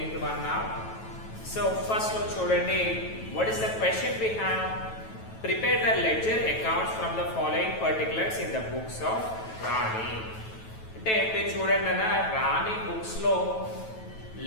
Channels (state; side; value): late; right; 9.2 ms